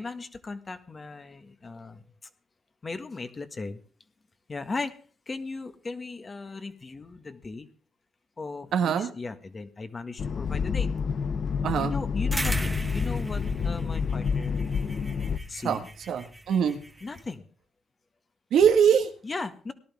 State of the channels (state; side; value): normal; both; correlation 0.74